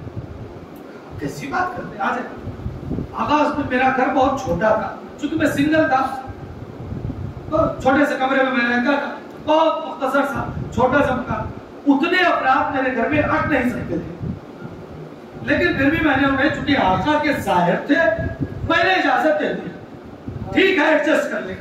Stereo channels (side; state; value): both; identical; correlation 1.00